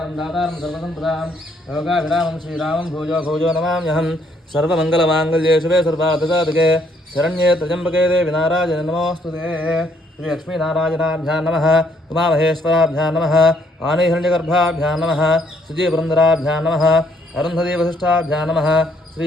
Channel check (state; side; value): normal; both; correlation 0.68